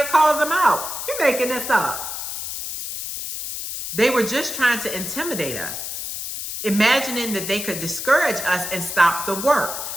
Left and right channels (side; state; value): left; noise; hiss, 6 dB below the sound